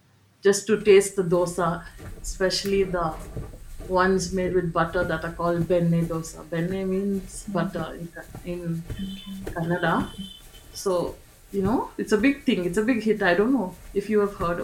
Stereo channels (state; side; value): identical; both; correlation 1.00